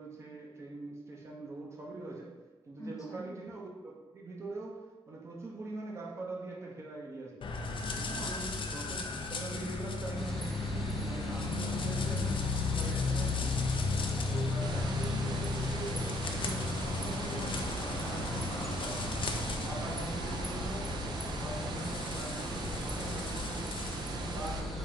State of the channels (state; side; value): normal; both; correlation 0.63